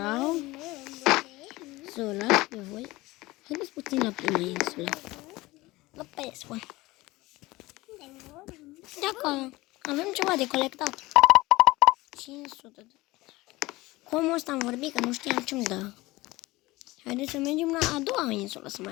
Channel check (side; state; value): right; quieter; 20.1 dB